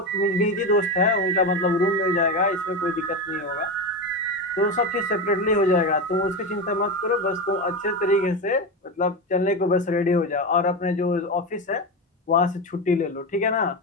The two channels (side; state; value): both; normal; correlation 0.17